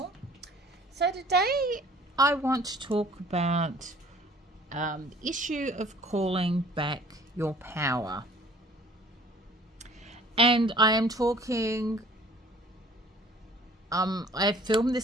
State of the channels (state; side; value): normal; both; correlation 0.52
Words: So today I want to talk about the issue of calling back your power. And I am talking, I filmed